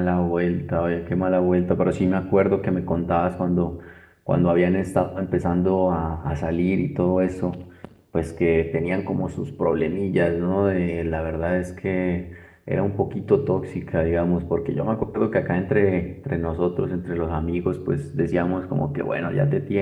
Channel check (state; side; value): identical; both; correlation 1.00